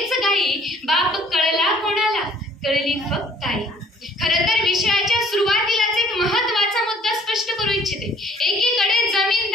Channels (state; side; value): normal; both; correlation 0.57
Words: गाई. बाप कळला कोणाला, कळली फक्त आई. खरं तर विषयाच्या सुरुवातीलाच एक महत्वाचा मुद्दा स्पष्ट करू इच्छिते. एकीकडे